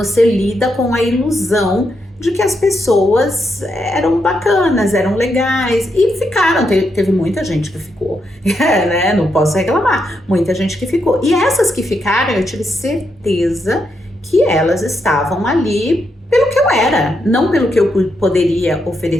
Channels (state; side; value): normal; both; correlation 0.81